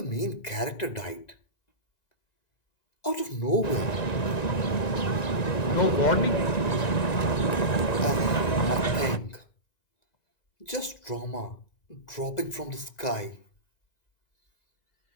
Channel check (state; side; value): late; right; 1.9 ms